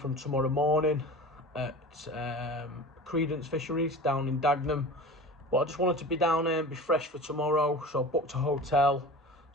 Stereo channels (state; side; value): normal; both; correlation 0.36